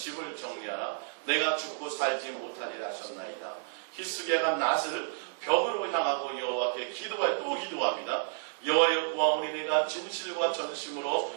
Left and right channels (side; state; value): left; silent; digital silence